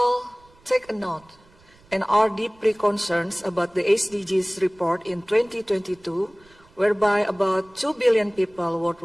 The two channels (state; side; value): noise; right; rumble, 29 dB below the sound